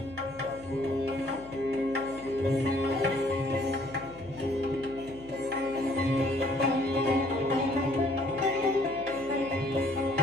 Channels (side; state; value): left; noise; hum, 20 dB below the sound